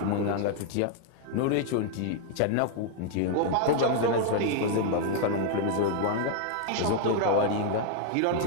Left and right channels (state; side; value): different; both; correlation 0.00